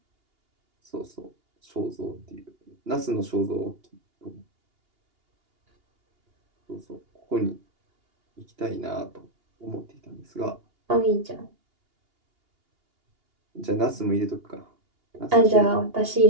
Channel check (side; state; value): left; late; 2.8 ms